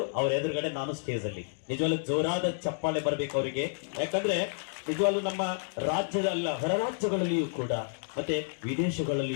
ಅವರ ಎದುರುಗಡೆ ನಾನು ಸ್ಟೇಜ್ ಅಲ್ಲಿ ನಿಜವಾಗ್ಲೂ ಜೋರಾದ ಚಪ್ಪಾಳೆ ಬರ್ಬೇಕು ಅವರಿಗೆ. ಯಾಕಂದ್ರೆ ನಿಜವಾಗ್ಲೂ ನಮ್ಮ ರಾಜ್ಯದ ಅಲ್ಲ, ಹೊರ ರಾಜ್ಯಗಳಲ್ಲಿಯೂ ಕೂಡ ಮತ್ತೆ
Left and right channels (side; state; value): right; silent; digital silence